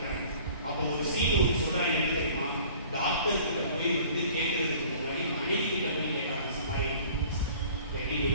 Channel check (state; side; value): inverted; both; correlation -0.49